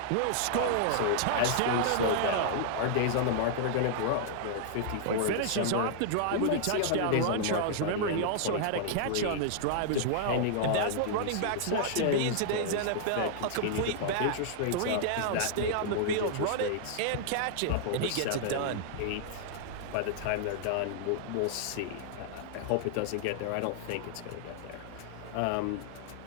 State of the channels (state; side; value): different; both; correlation -0.01